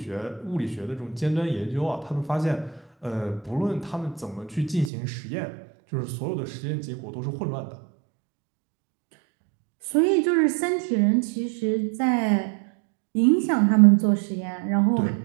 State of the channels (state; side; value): drops out; left; at 4.9 s